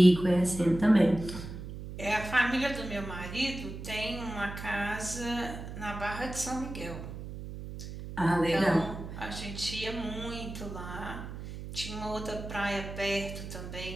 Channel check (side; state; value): right; noise; hum, 9 dB below the sound